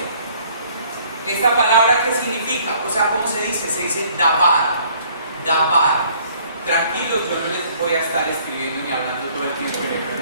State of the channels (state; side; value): inverted; both; correlation -0.59